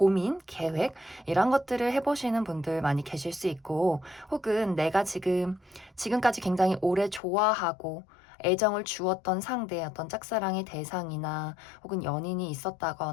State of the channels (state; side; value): drops out; right; at 7.2 s